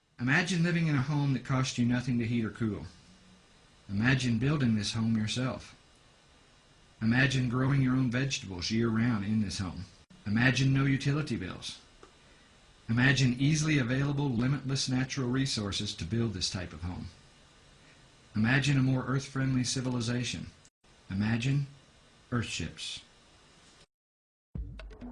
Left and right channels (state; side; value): identical; both; correlation 1.00